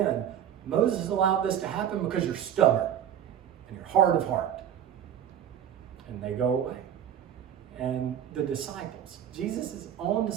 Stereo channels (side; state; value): left; quieter; 9.7 dB